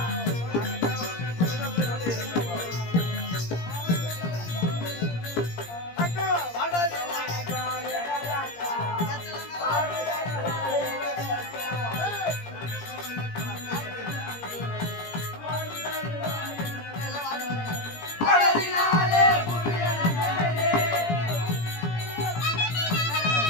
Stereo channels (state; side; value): late; right; 17 ms